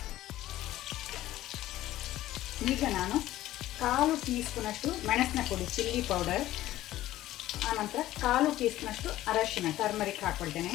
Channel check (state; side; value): quieter; right; 14.8 dB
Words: ಈಗ ನಾನು 1/4 ಟೀ ಸ್ಪೂನ್ ಅಷ್ಟು ಮೆಣಸಿನ ಪುಡಿ ಚಿಲ್ಲಿ ಪೌಡರ್, ಆನಂತರ 1/4 ಟೀ ಸ್ಪೂನ್ ಅಷ್ಟು ಅರಶಿನ ಟರ್ಮರಿಕ್ ಹಾಕೊಳ್ತೇನೆ.